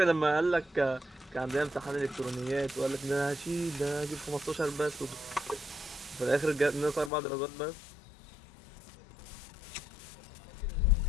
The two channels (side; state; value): right; drops out; at 7.1 s